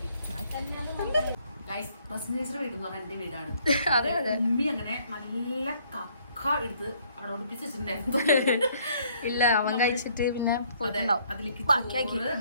വീട് എന്റെ വീടാണ്. അതെ അതെ. ഉമ്മി അങ്ങനെ നല്ല കക്ക എടുത്ത് അവിടെ ഒളിപ്പിച്ച് വെച്ചിട്ടുണ്ടായിരുന്നു. ഇല്ല, അവൻ കഴിച്ചിട്ട് പിന്നെ പോയിട്ടുണ്ടാവും. അതിലേക്ക്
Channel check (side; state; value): both; inverted; correlation -0.64